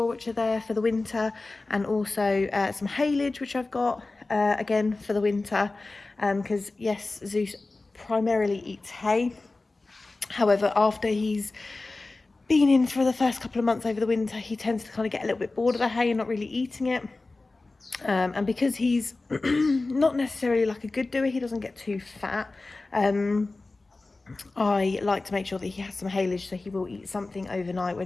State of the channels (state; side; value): quieter; right; 3.3 dB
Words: which are there for the winter. And also some haylage, which I've got again for the winter. Because yes, Zeus primarily eats hay. However, after he's been in for the first couple of months over the winter, he tends to kind of get a little bit bored of the hay and not really eating it. And because he's not necessarily like a good doer, he doesn't get too fat. I like to make sure that he has some haylage, so he will eat something overnight